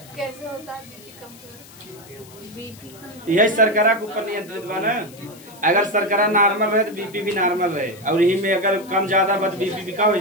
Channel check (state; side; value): noise; left; hiss, 21 dB below the sound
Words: कैसे होता है बीपी कम? यही शर्करा के ऊपर नियंत्रित बा ना, अगर शर्करा नॉर्मल रहे तो बीपी भी नॉर्मल रहे, और यही में अगर कम ज्यादा बस बीपी भी का हो